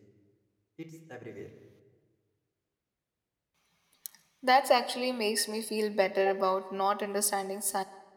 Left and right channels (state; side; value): identical; both; correlation 1.00